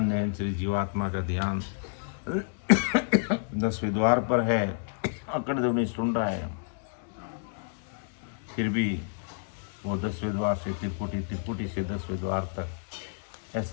निहंचरी जीवात्मा का ध्यान 10वें द्वार पर है, अखंड ध्वनि सुन रहा है, फिर भी वो 10वें द्वार से त्रिकुटी, त्रिकुटी से 10वें द्वार तक,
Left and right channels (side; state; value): right; silent; digital silence